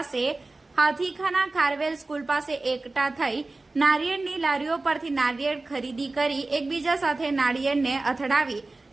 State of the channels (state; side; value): quieter; left; 3.2 dB